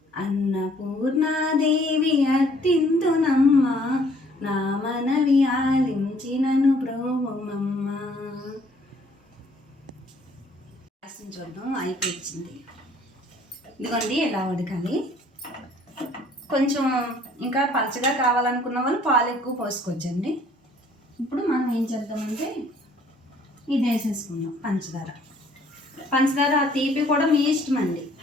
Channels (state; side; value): normal; both; correlation 0.60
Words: అన్నపూర్ణాదేవి అత్తింతునమ్మ, నా మనవి ఆలించి నన్ను బ్రోవమమ్మ. చూద్దాం, అయిపోయింది. ఇదిగోండి ఎలా ఉడకాలి. కొంచెం ఇంకా పలచగా కావాలనుకున్న వాళ్ళు పాలు ఎక్కువ పోసుకోవచ్చండి. ఇప్పుడు మనం ఏం చేద్దామంటే ఇది వేసేసుకుందాం పంచదార తీపి కూడా మీ ఇష్టం అండి.